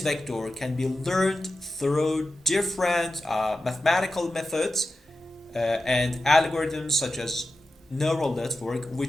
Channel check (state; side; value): normal; both; correlation 0.92